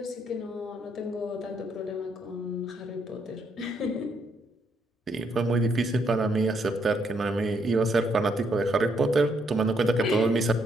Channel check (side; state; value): both; normal; correlation 0.74